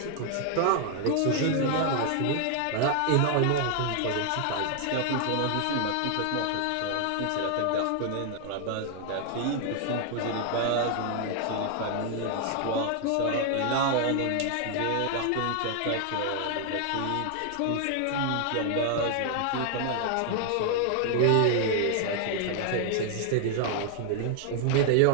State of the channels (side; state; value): both; different; correlation 0.00